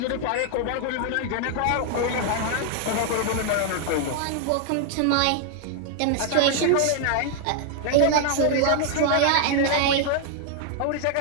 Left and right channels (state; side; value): different; both; correlation 0.00